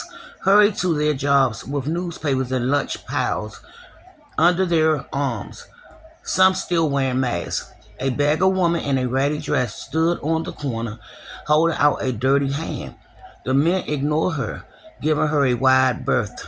hurried to their jobs with newspapers and lunch piles under their arms, some still wearing masks. A beggar woman in a ratty dress stood on the corner, holding out a dirty hand. The men ignored her, giving her a wide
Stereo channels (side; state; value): both; identical; correlation 1.00